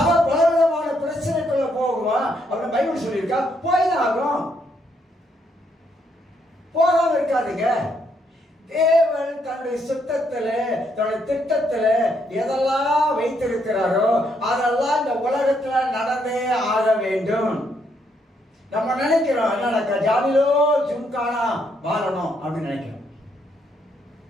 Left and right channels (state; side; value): normal; both; correlation 0.74